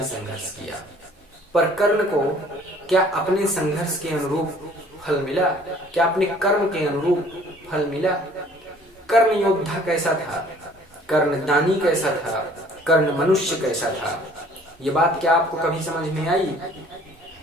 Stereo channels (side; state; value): both; normal; correlation 0.55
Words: संघर्ष किया, पर कर्ण को क्या अपने संघर्ष के अनुरूप फल मिला? क्या अपने कर्म के अनुरूप फल मिला? कर्ण योद्धा कैसा था? कर्ण दानी कैसा था? कर्ण मनुष्य कैसा था? ये बात क्या आपको कभी समझ में आई?